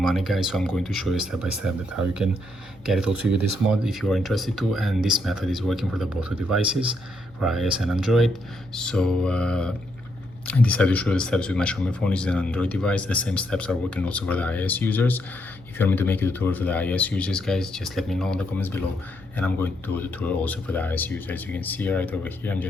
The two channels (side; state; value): both; normal; correlation 0.77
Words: guys. So I'm going to show you step by step that how you can get it also with this mod if you are interested to, and this method is working for the both devices, for iOS and Android. So I decided to show the steps with my Xiaomi phone, which is an Android device. The same steps are working also for the iOS users. If you want me to make a tutorial for the iOS users, guys, just let me know in the comments below, and I'm going to do a tutorial also for the iOS users. As you can see right over here, I'm